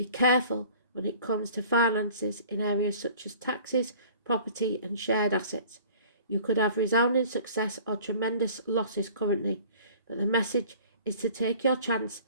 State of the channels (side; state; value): both; inverted; correlation -0.47